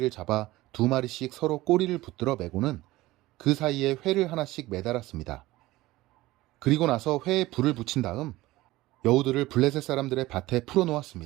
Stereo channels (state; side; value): quieter; left; 18.1 dB